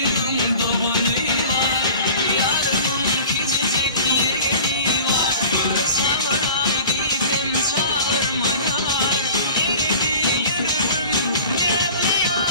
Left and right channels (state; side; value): inverted; both; correlation -0.42